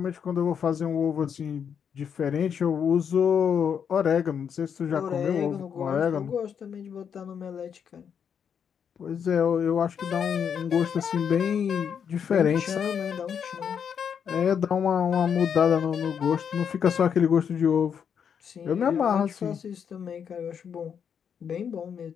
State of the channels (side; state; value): right; quieter; 7.5 dB